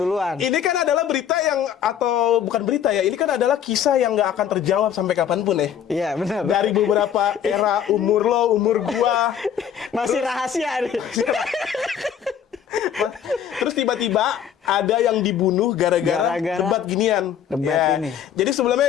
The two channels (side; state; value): right; quieter; 8.9 dB